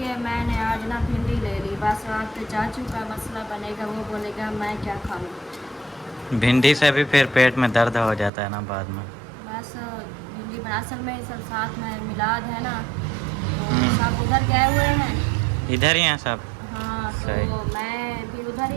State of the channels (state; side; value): drops out; left; at 8.3 s